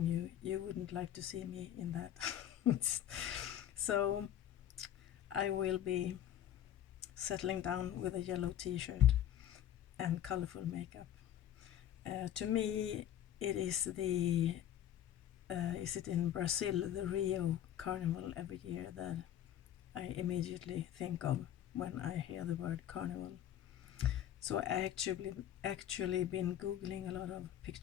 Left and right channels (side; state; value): right; quieter; 11.2 dB